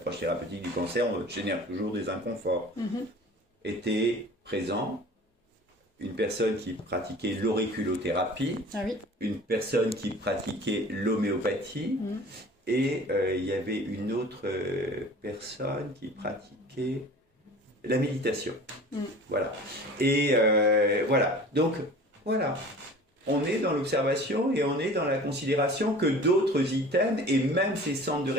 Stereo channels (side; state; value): both; normal; correlation 0.43